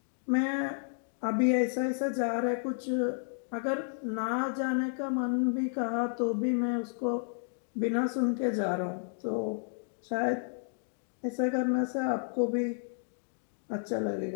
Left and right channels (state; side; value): silent; right; digital silence